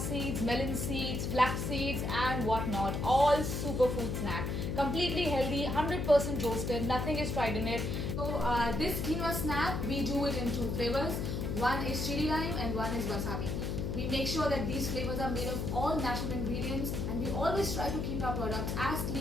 melon seeds, flax seeds and whatnot. All superfood snack. Completely healthy, 100% roasted, nothing is fried in it. So this quinoa snack, we do it in two flavors. One is chili lime and one is wasabi. We make sure that these flavors are made of all natural ingredients, and we always try to keep our products as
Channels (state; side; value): noise; left; hum, 2 dB below the sound